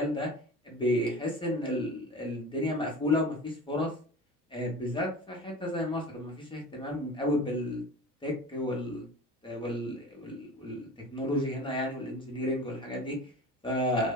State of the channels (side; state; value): both; normal; correlation 0.36